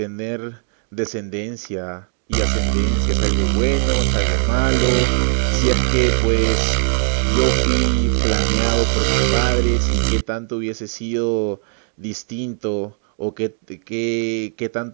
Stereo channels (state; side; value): silent; left; digital silence